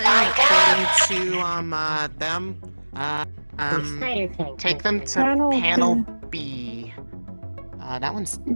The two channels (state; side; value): inverted; both; correlation -1.00